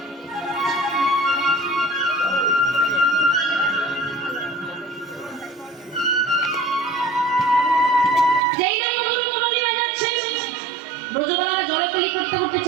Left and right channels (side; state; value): left; drops out; at 8.4 s